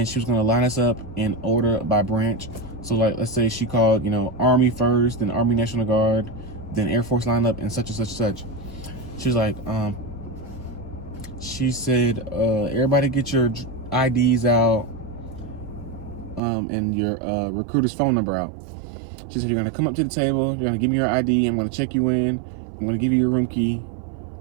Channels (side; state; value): left; drops out; at 16.4 s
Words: she was going to line us up in order by branch. So like, let's say she called, Army first, then Army National Guard, then Air Force line up, and such and such and such. She was like, she said, everybody get your IDs out, and your recruiter's phone number out. She said, you're gonna come up to the table, you're gonna give me your ID, I'm gonna check you in, I'm gonna give you your room key,